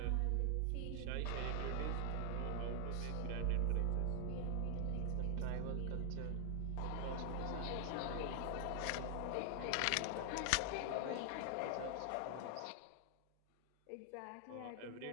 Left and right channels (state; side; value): different; both; correlation 0.00